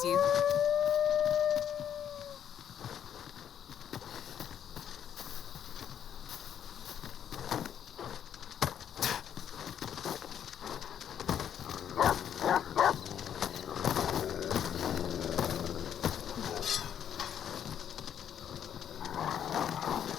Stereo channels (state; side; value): quieter; right; 9.3 dB